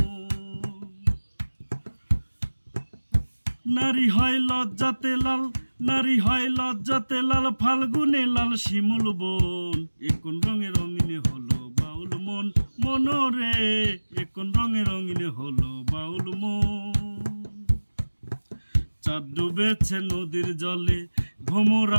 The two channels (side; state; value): both; inverted; correlation -1.00